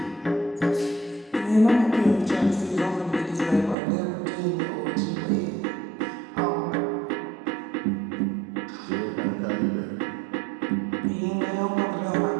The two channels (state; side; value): drops out; left; at 3.8 s